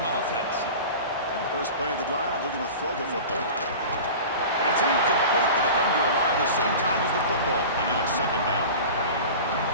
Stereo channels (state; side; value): inverted; both; correlation -0.35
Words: offense. First play of the drive, looking to throw the football. And it's incomplete. The defender arrived at the same time as the football, and now it's 2nd down.